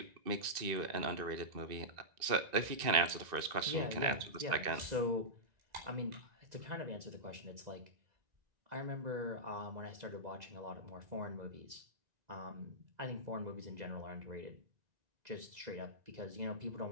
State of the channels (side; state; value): left; late; 1.9 ms